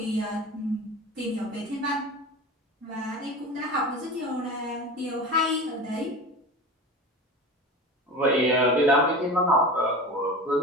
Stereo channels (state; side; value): normal; both; correlation 0.31